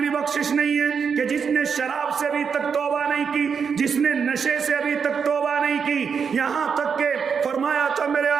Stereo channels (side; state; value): left; quieter; 6.3 dB